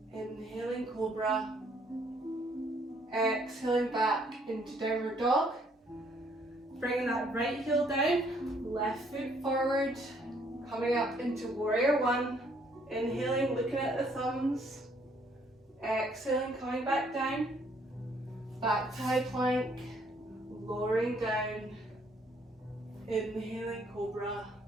inhaling cobra, exhaling back into downward dog, bringing that right heel down, left foot forward, coming up into warrior one, inhaling, looking at the thumbs, exhaling, coming back down, back to high plank, lowering down, inhaling cobra,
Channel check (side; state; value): both; normal; correlation 0.66